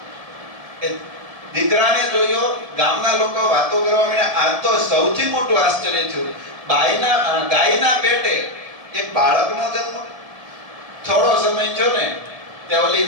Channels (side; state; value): left; late; 1.7 ms